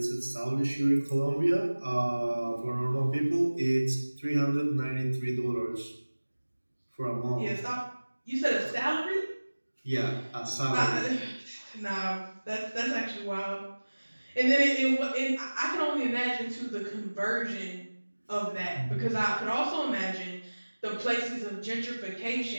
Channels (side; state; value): both; inverted; correlation -1.00